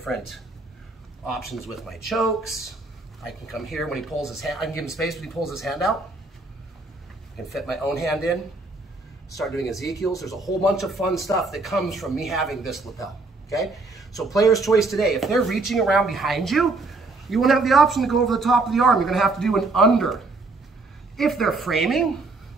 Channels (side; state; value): left; quieter; 3.4 dB